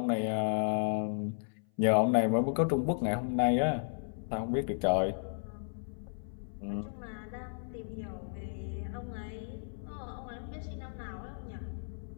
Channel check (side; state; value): right; silent; 55 dB below the other